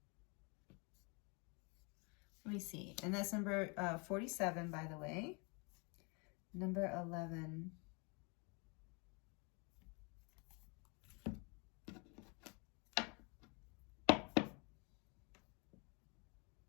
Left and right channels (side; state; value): right; quieter; 32.1 dB